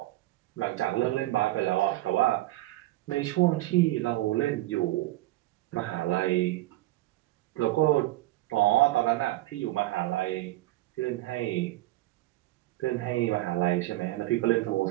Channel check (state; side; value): quieter; left; 17.2 dB